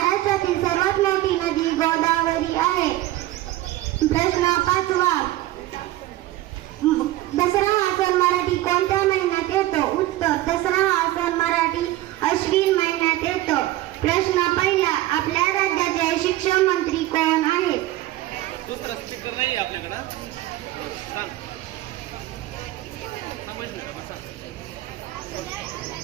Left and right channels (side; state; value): left; quieter; 15.9 dB